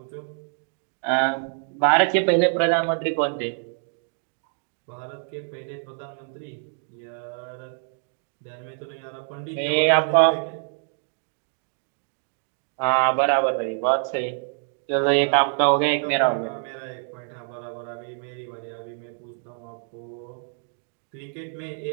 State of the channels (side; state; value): left; silent; 61 dB below the other